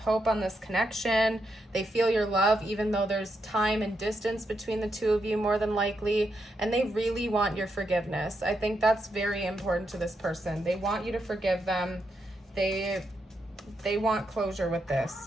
on this connection. They feel your love, even though there's time and distance between the two of you more than likely, and they really want your forgiveness. I think that's very important to this person. They want you to forgive them. They want closure with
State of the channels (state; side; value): normal; both; correlation 0.82